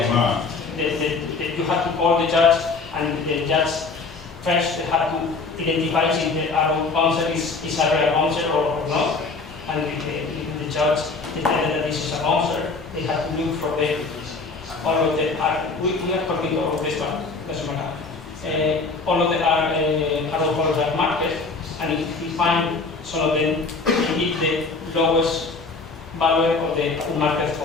Unmarked. You have to call the judge, and the judge first have to identify if the arrow bouncer is a real bouncer or not. And if the judge determines that this is a bouncer, they have to look for all of the we are talking about this one, doesn't matter. All of the arrow holes are marked, and if we find some of them, we give the lowest value of the unmarked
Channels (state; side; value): quieter; right; 4.1 dB